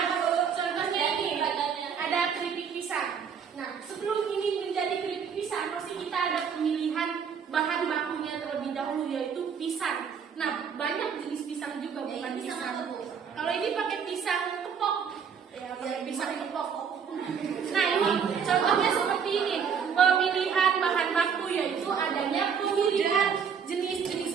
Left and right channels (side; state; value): left; quieter; 6.9 dB